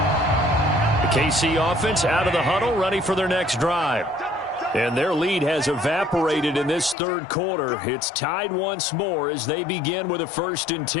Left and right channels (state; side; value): drops out; right; at 7.0 s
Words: KC offense out of the huddle, ready for their next drive. And their lead has evaporated in this third quarter. It's tied once more as they begin with a 1st and